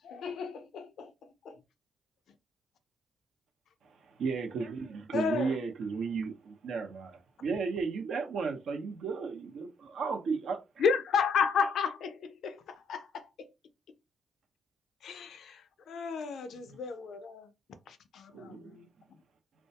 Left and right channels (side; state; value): both; normal; correlation 0.69